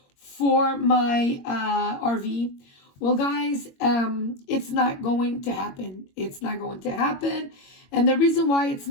for my RV. Well, guys, it's not going to happen. It's not going to happen. And the reason why it's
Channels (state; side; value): late; right; 22 ms